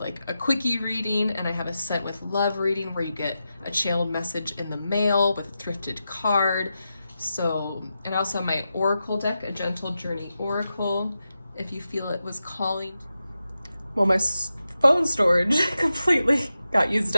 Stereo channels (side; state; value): both; inverted; correlation -0.90